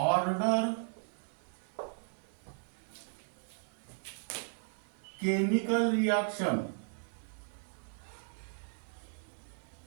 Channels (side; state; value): left; silent; 54 dB below the other